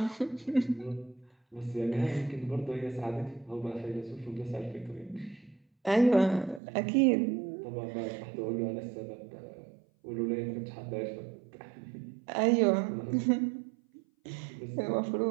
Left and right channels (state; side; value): drops out; left; at 6.6 s